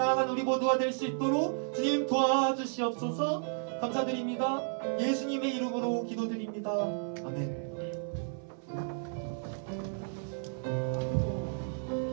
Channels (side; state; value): left; silent; 56 dB below the other